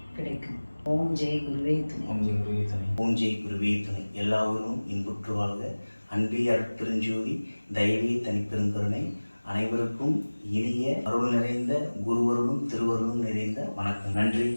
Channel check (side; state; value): both; inverted; correlation -1.00